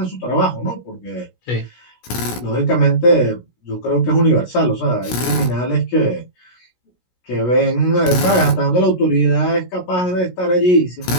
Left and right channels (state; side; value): late; right; 16 ms